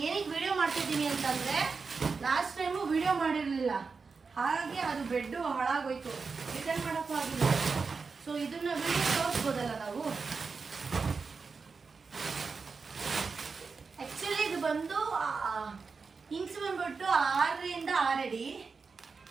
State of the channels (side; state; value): left; quieter; 4.8 dB